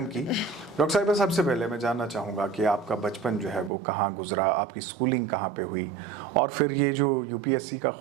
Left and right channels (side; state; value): left; drops out; at 3.7 s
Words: की। डॉक्टर साहिबा, सबसे पहले मैं जानना चाहूँगा कि आपका बचपन जो है वो कहाँ गुजरा, आपकी स्कूलिंग कहाँ पे हुई और फिर ये जो यूपीएससी का